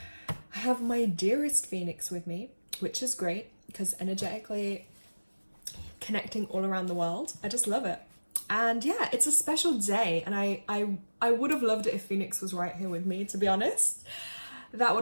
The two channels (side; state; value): both; inverted; correlation -1.00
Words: have my dearest Phoenix with me, which is great because energetically connecting all around the world. I just love it. And yeah, it's a special day, and I would have loved it if Phoenix was right here with me, to be honest. That